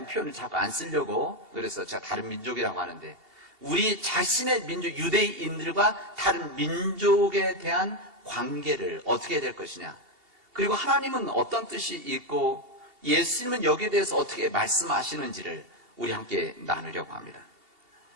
표현을 자꾸 안 쓰려고 그래서 제가 다른 민족이라고 하는데, 우리 자신의 민족, 유대인들과 다른 민족에 대한 관계를 어떻게 해야 될 것이냐, 그리고 하나님은 어떤 뜻이 있고 예수님은 여기에 대해서 어떻게 말씀하시는지를 우리 함께 나누려고 합니다.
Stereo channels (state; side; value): late; left; 2.8 ms